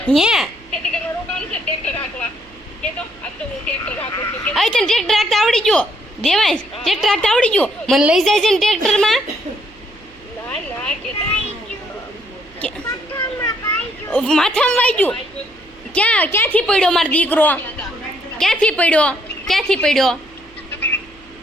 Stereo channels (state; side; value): noise; right; hum, 27 dB below the sound